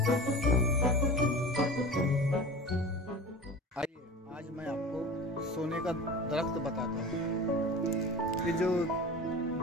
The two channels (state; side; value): normal; both; correlation 0.35